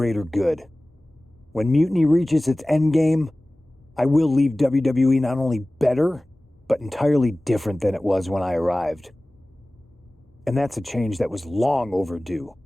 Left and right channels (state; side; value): normal; both; correlation 0.98